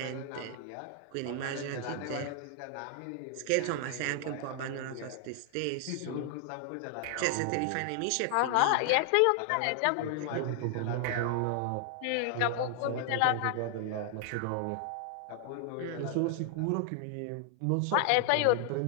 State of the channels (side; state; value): both; different; correlation 0.00